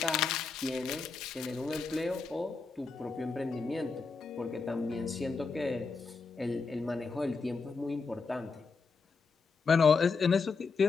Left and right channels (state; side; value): quieter; right; 4.6 dB